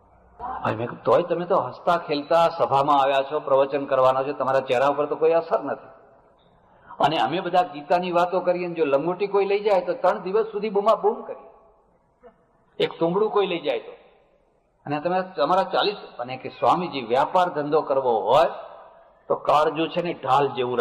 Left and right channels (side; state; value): both; identical; correlation 1.00